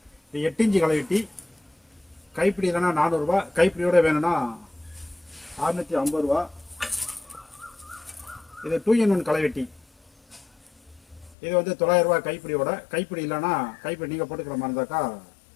இது 8 இன்ச்சு களைவெட்டி, கைப்பிடி இல்லைன்னா 400 ரூபா, கைப்பிடியோட வேணும்னா 650 ரூபா. இது 2-in-1 களைவெட்டி. இது வந்து 900 ரூபா கைப்பிடியோட. கைப்பிடி இல்லைன்னா கைப்பிடி நீங்கள் போட்டுக்கிற மாதிரி இருந்தாக்கா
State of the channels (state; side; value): drops out; right; at 11.4 s